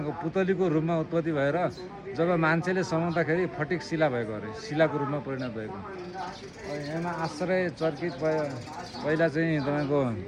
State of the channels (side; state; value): both; identical; correlation 1.00